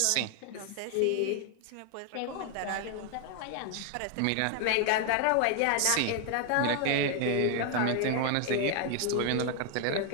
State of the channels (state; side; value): different; both; correlation 0.00